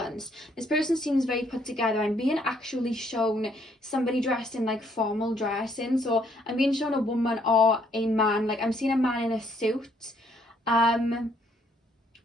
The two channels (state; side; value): normal; both; correlation 0.68